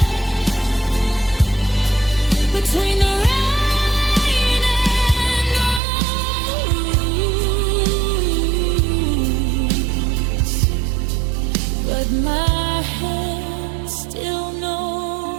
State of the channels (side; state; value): left; drops out; at 5.8 s